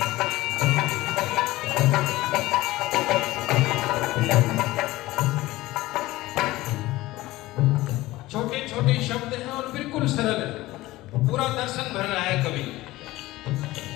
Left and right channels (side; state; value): right; quieter; 18.2 dB